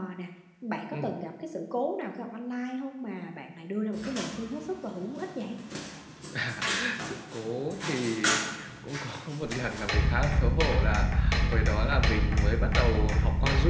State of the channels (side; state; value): both; identical; correlation 1.00